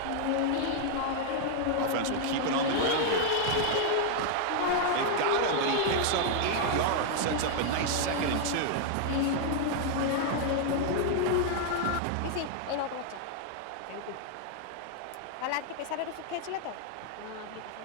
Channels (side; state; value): both; different; correlation 0.00